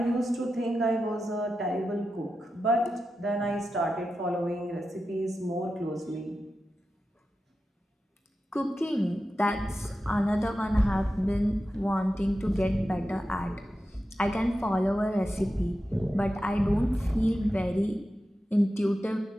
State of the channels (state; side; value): normal; both; correlation 0.91